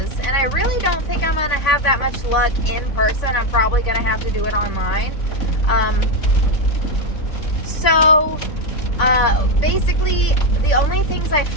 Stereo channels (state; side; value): late; right; 3.6 ms